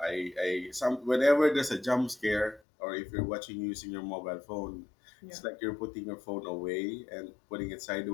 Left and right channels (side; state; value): right; drops out; at 2.6 s